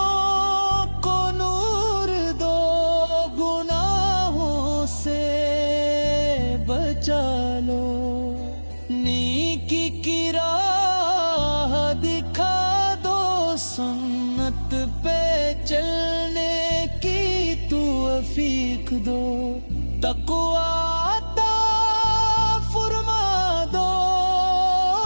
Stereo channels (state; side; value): inverted; both; correlation -1.00